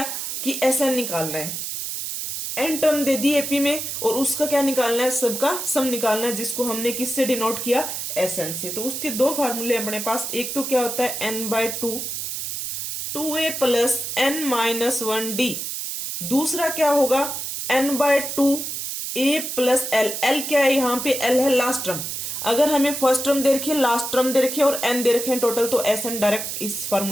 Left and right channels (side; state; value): right; noise; hiss, 4 dB below the sound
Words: कि एस एन निकालना है, एन टर्म दे दी एपी में, और उसका क्या निकालना है, सबका सम निकालना है, जिसको हमने किससे डिनोट किया, एस एन से। तो उसके दो फार्मूले अपने पास, एक तो क्या होता है n/2, 2a plus n minus 1d, दूसरा क्या होगा n/2 a plus l। l क्या है, यहां पे l है लास्ट टर्म, अगर हमें फर्स्ट टर्म दे रखी है, लास्ट टर्म दे रखी है और n दे रखे हैं टोटल, तो एस एन डायरेक्ट इस